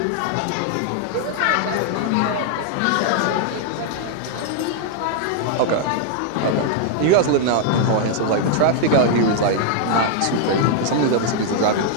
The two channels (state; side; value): different; both; correlation 0.00